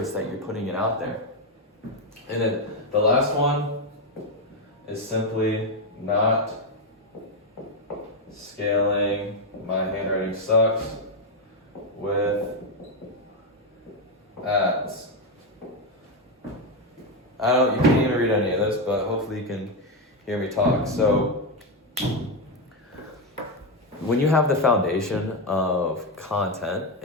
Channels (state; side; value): normal; both; correlation 0.06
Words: that you're putting it out there? And then the last one is simply not scaling. My handwriting sucks with ads. You can't even read any of this, but hopefully you can hear me talk. So when you have the foundation of content